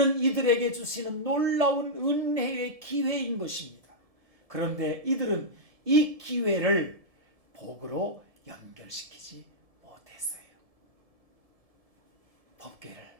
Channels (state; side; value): late; left; 1.7 ms